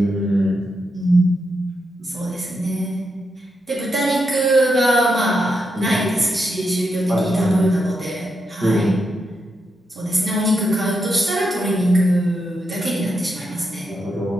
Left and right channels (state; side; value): normal; both; correlation 0.84